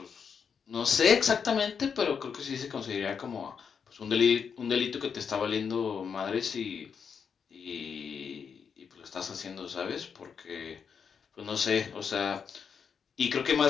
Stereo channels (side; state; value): right; quieter; 6.6 dB